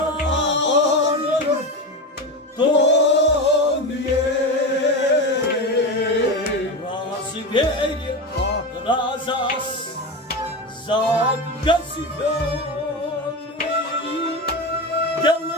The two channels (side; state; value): both; normal; correlation 0.20